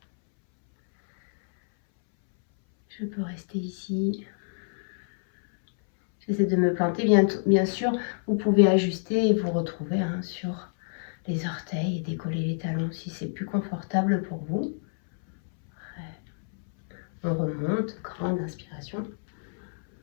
Je peux rester ici. J'essaie de me planter. Bien sûr, vous pouvez ajuster et vous retrouver sur les orteils et décoller les talons si c'est plus confortable pour vous. On remonte, grande inspiration.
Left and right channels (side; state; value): right; silent; 60 dB below the other